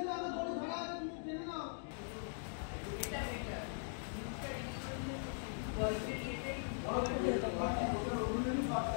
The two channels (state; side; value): silent; right; digital silence